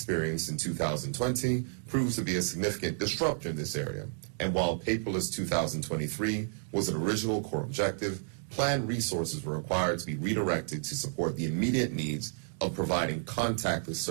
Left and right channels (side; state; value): left; silent; digital silence